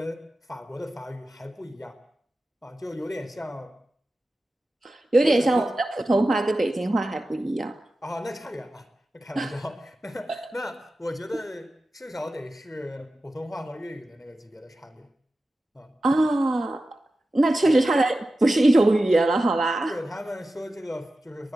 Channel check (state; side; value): normal; both; correlation 0.94